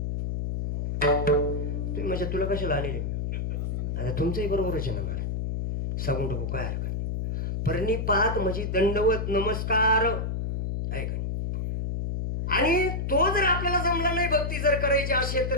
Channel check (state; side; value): noise; left; hum, 2 dB below the sound